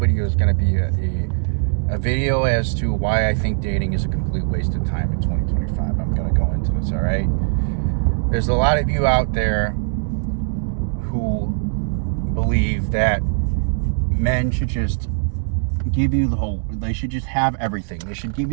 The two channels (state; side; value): silent; left; 65 dB below the other